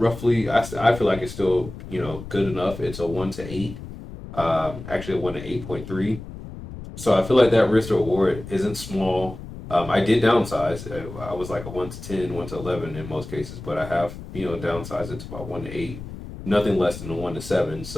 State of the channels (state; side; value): noise; left; rumble, 12 dB below the sound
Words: I feel like it's still good enough. It's a 1 to 8. Actually a 1 to 8.3. So I feel like that risk reward isn't small. I did downsize. I was like a 1 to 10, 1 to 11 in most cases, but I have downsized it to about 1 to 8, nothing less than a 1 to 7.